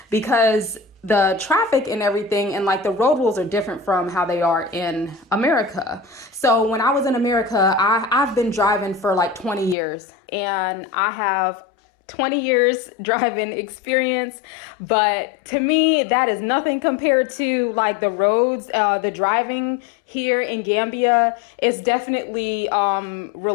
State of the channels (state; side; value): drops out; right; at 9.8 s